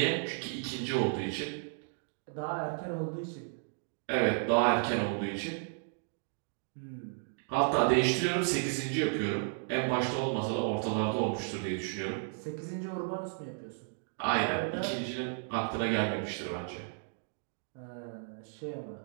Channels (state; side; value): silent; left; digital silence